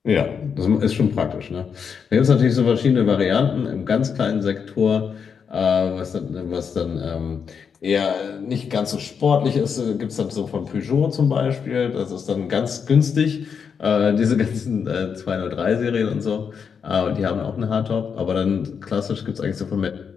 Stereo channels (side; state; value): right; quieter; 6.6 dB